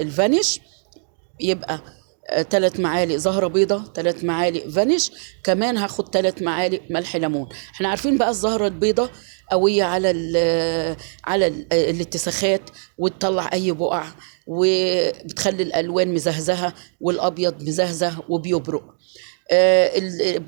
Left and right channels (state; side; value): silent; left; digital silence